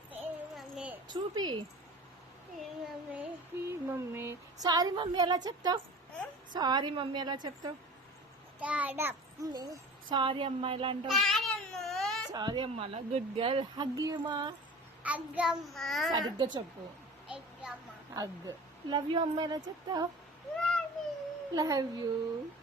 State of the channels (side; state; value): both; normal; correlation 0.39